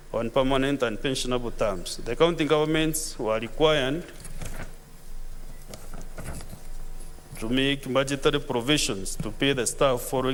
on permanent and pensionable terms. The county governments were required to make budgetary provisions to pay the staff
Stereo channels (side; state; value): both; identical; correlation 1.00